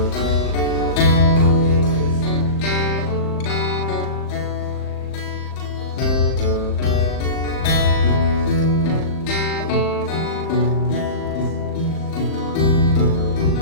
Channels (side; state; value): right; late; 39 ms